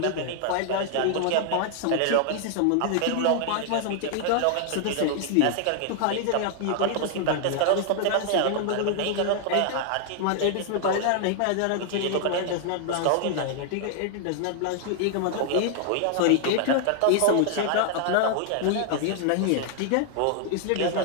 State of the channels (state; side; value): different; both; correlation 0.00